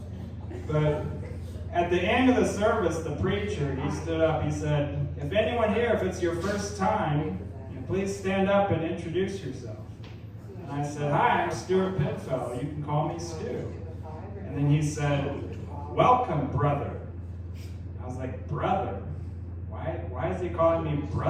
But at the end of the service, the preacher, he stood up, he said, if anyone here, if it's your first time, please stand up and introduce yourself. And I said, hi, I'm Stewart Pidfellow. You can call me Stu. And then he said, welcome, brother. I was like, brother? Why is he calling me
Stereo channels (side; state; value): both; identical; correlation 1.00